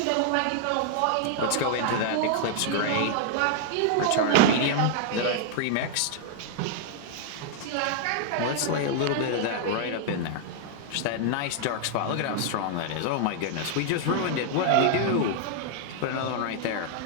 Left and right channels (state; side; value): different; both; correlation 0.00